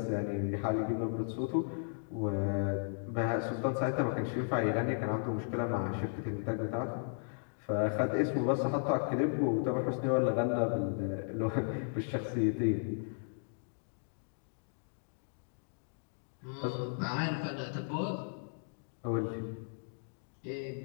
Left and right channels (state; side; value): silent; right; digital silence